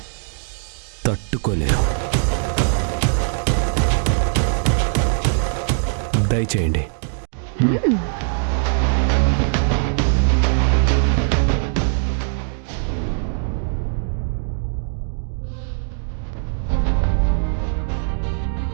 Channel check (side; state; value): left; silent; digital silence